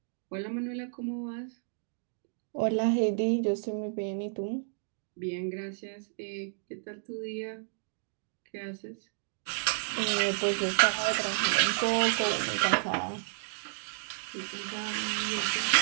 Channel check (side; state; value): left; silent; digital silence